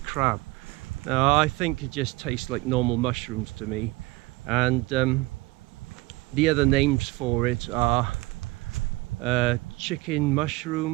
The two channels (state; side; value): quieter; left; 21.3 dB